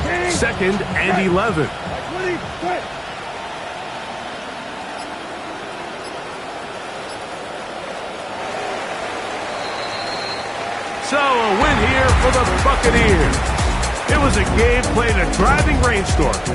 Second and 11. So a win here for the Buccaneers. It was a game played in a driving rainstorm.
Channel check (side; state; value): both; identical; correlation 1.00